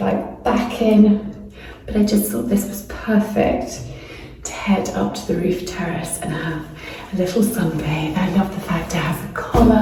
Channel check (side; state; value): both; identical; correlation 1.00